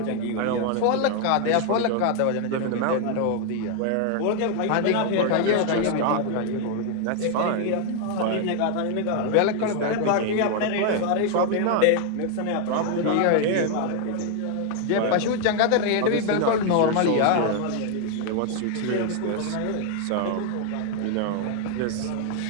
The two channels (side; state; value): both; different; correlation 0.01